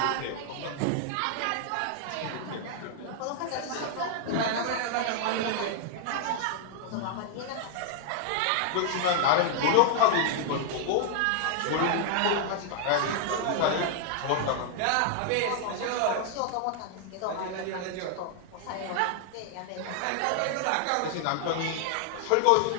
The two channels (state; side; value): different; both; correlation 0.00